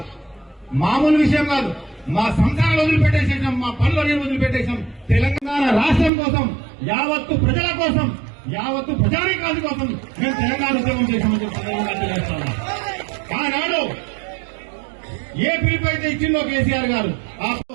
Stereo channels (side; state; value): left; drops out; at 6.1 s